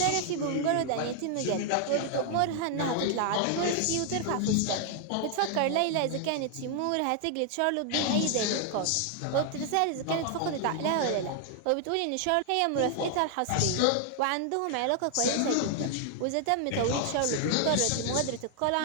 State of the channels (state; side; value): different; both; correlation 0.00